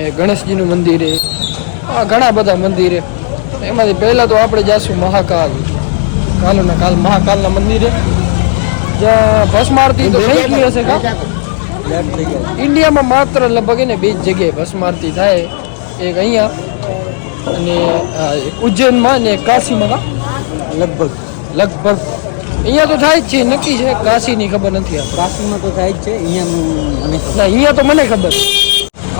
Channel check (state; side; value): silent; right; 73 dB below the other